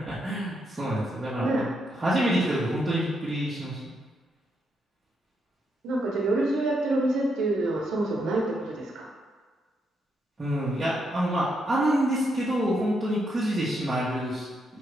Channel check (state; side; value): normal; both; correlation 0.79